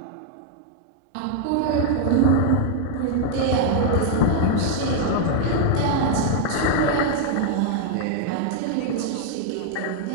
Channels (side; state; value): both; different; correlation 0.00